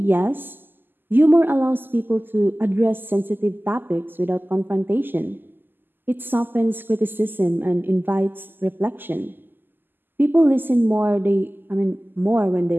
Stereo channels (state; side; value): late; left; 0.093 ms